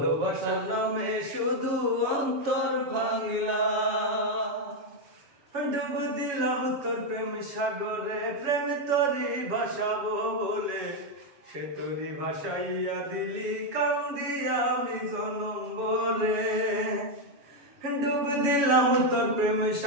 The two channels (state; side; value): late; left; 7.1 ms